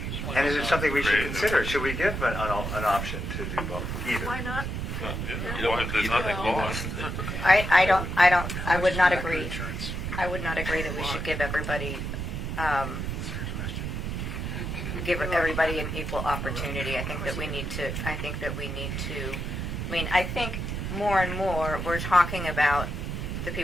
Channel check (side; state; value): right; noise; rumble, 4 dB below the sound